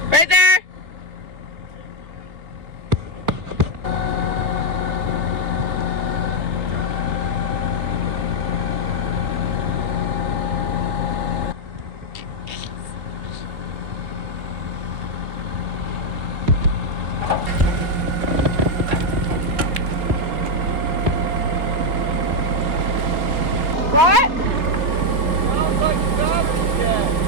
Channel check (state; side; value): late; left; 3.3 ms